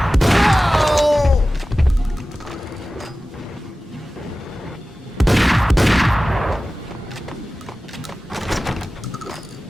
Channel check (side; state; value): both; normal; correlation 0.96